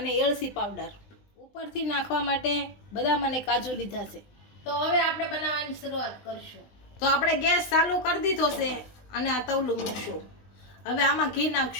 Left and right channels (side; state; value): right; late; 20 ms